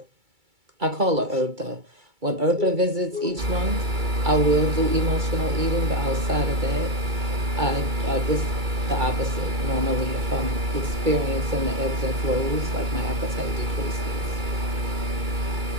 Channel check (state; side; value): late; left; 2.3 ms